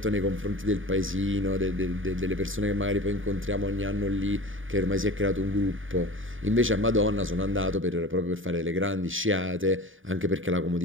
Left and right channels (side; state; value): left; late; 0.58 ms